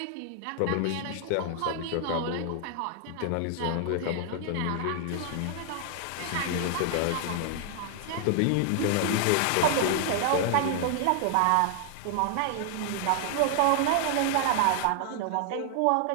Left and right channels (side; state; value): both; different; correlation 0.00